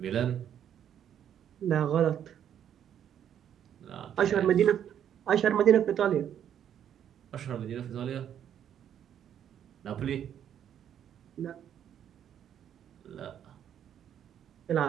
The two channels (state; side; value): quieter; left; 9.6 dB